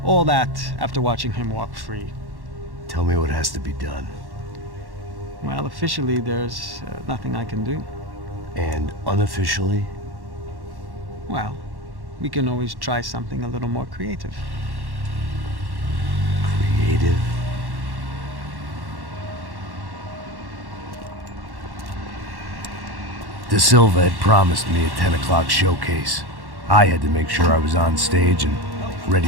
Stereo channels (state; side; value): late; left; 1.1 ms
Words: All that after watching him walk free. Tell me what has to be done. Well, officially there's nothing I can do. And unofficially? Well, we can always try something a little more creative. Creative? De Silva had promised me a 10 o'clock showcase. I had to make sure I was on stage and